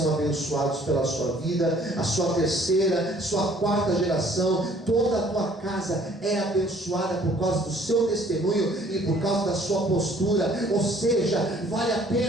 abençoados pela sua vida, a sua terceira, sua quarta geração, toda a tua casa é abençoada por causa do seu testemunho e por causa da sua postura. Ou seja, vale a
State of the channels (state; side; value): normal; both; correlation 0.58